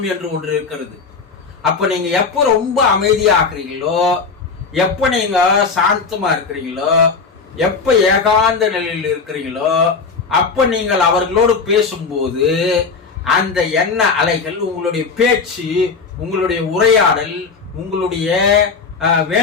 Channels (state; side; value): quieter; right; 4.8 dB